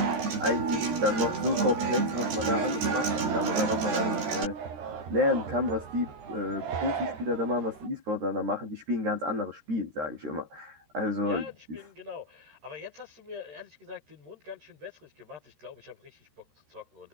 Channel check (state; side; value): late; left; 13 ms